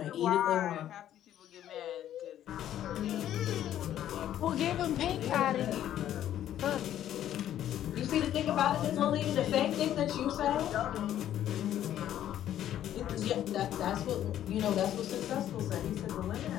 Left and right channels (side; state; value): right; quieter; 11.5 dB